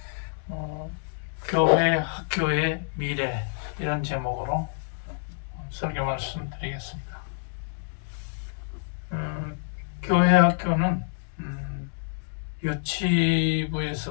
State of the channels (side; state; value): right; silent; digital silence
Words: 교회 학교의 미래 이런 제목으로 설교 말씀 드리겠습니다. 교회 학교는